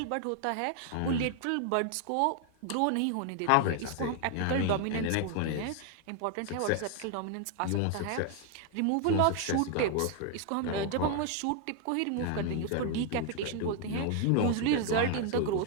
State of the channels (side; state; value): both; different; correlation 0.00